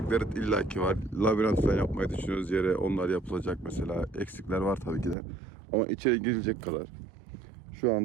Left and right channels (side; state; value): left; drops out; at 5.2 s